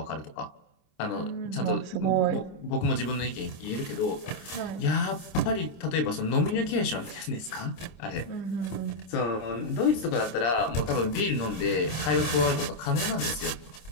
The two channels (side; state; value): right; late; 26 ms